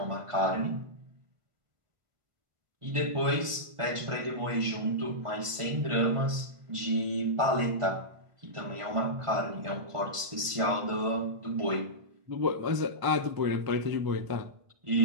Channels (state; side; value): late; left; 1.5 ms